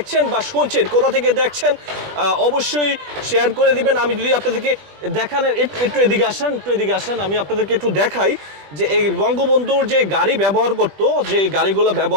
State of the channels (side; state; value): left; late; 20 ms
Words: বা শুনছেন কোথা থেকে দেখছেন অবশ্যই শেয়ার করে দিবেন। আমি যদি আপনাদেরকে দেখানোর একটু এদিকে আসেন আমি আপনাদেরকে একটু দেখাই যে এই বঙ্গবন্ধুর যে গাড়ি ব্যবহার করতো, যে গাড়িগুলো